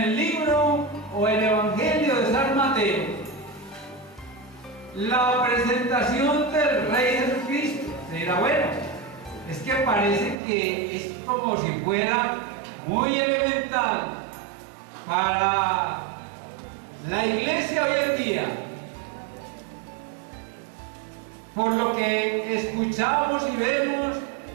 libro o el Evangelio de San Mateo la presentación del Rey Jesucristo. Se dirá, bueno, es que parece que es como si fuera muy elemental para la iglesia hoy en día. Por lo que escuchamos y vemos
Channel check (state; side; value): drops out; left; at 10.4 s